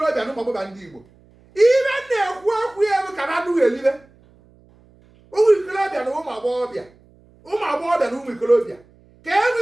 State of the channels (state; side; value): noise; right; hum, 29 dB below the sound